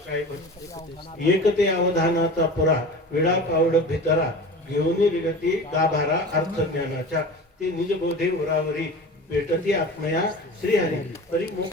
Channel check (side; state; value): both; normal; correlation 0.35